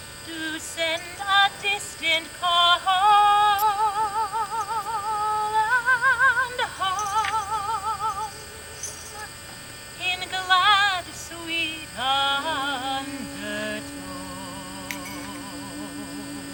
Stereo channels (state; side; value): identical; both; correlation 1.00